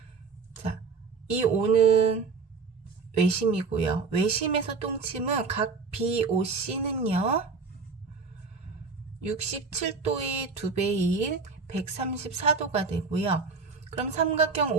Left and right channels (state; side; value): quieter; left; 4.7 dB